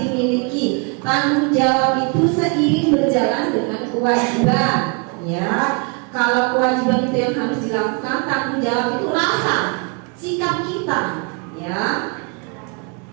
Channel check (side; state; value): left; quieter; 33.9 dB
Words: Tanggung jawab itu seiring berjalan dengan kewajiban, ya. Kalau kewajiban itu yang harus dilakukan, tanggung jawab itu rasa, sikap kita, ya.